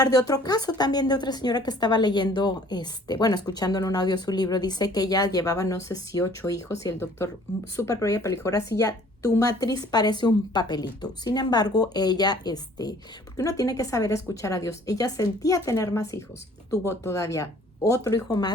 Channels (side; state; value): both; normal; correlation 0.55